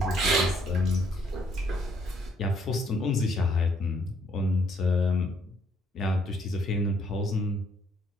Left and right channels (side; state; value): both; normal; correlation 0.67